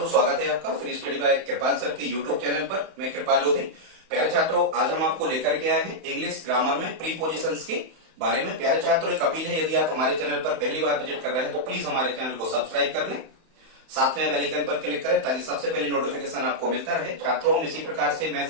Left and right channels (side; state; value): left; late; 31 ms